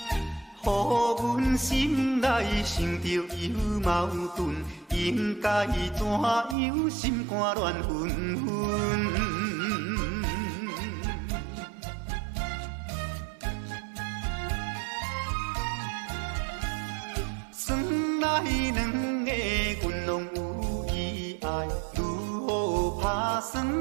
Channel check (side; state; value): left; drops out; at 6.6 s